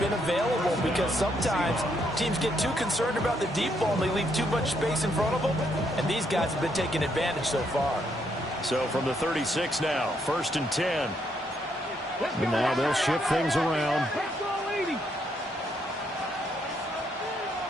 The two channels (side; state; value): both; normal; correlation 0.74